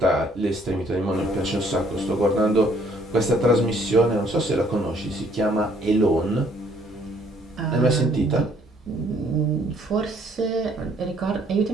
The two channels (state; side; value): normal; both; correlation 0.63